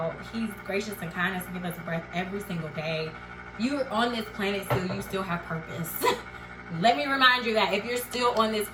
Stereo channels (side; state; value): both; identical; correlation 1.00